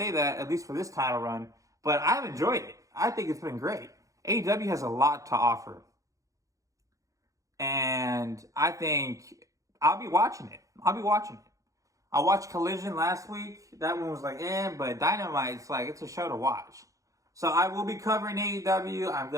that, at least for this title run, but I've enjoyed it. I think it's been great. AEW has a lot to offer. And I think I'll be watching it. I watched Collision last week. That one was like, but Dynamite's like, it's a show to watch. So I will be covering AEW. I'm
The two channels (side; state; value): left; late; 0.16 ms